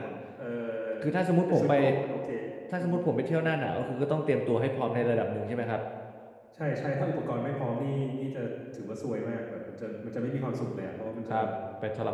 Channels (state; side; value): identical; both; correlation 1.00